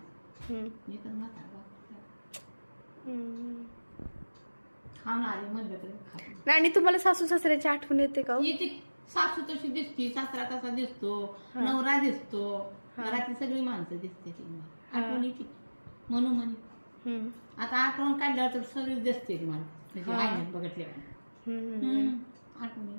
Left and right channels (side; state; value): both; inverted; correlation -1.00